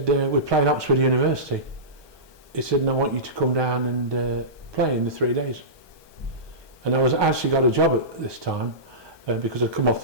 "We're playing Oxford University." He said, "And I want you to come down and play in the 3 days." And I was actually got a job at this time because I'd come off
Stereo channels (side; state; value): left; late; 1.2 ms